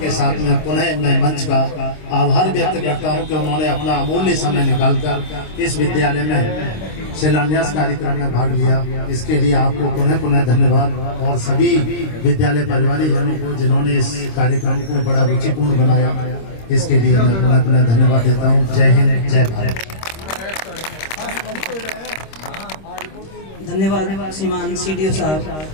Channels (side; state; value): right; late; 26 ms